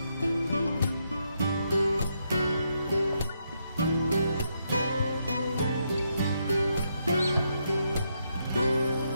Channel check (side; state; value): both; inverted; correlation -0.79